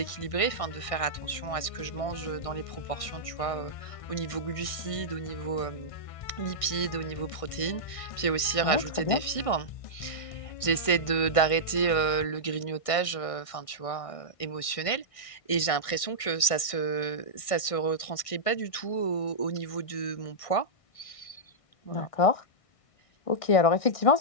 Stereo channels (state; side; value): late; right; 1.6 ms